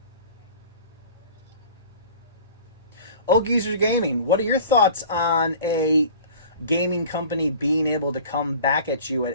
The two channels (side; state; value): both; inverted; correlation -0.43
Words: Old Geezer Gaming, what are your thoughts on a gaming company being able to come back at you at